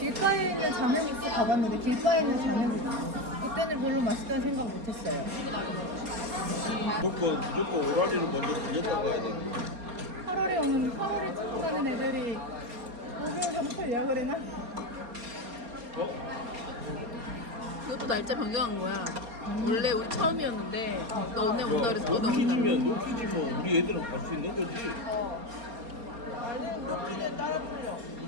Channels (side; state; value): left; late; 4.3 ms